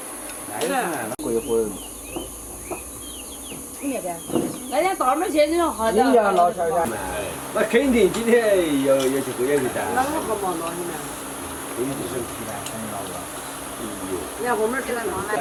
过一会儿。那天到那儿去，你说好你家老小家，那肯定今天要去喝点味道。那我好忙到你们。你看后面吃了嘛？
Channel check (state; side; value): identical; both; correlation 1.00